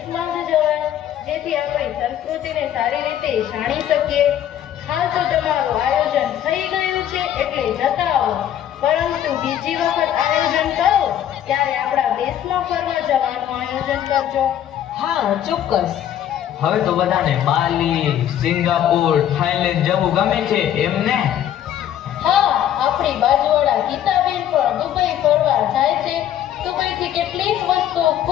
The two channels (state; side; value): quieter; right; 10.8 dB